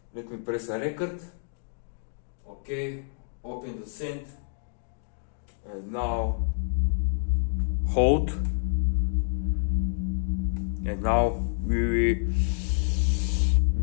Let me press a record. Okay, open the synth, and now hold, and now we will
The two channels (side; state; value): right; silent; digital silence